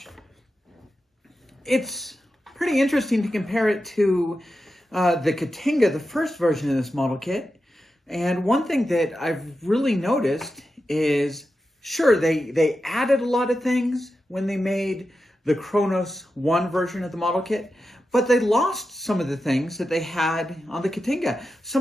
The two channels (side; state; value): both; normal; correlation 0.90